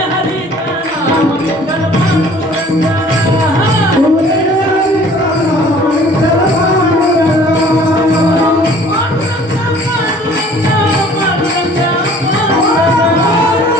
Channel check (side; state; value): both; normal; correlation 0.52